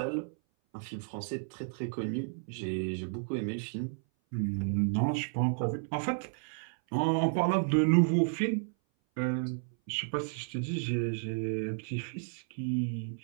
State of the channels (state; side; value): silent; left; 56 dB below the other